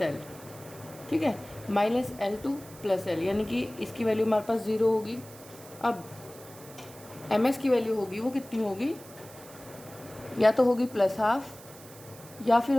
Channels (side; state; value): right; noise; hiss, 19 dB below the sound